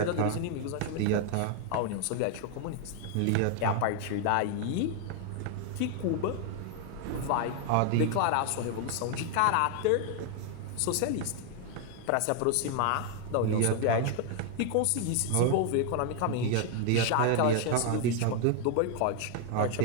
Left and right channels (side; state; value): both; different; correlation 0.00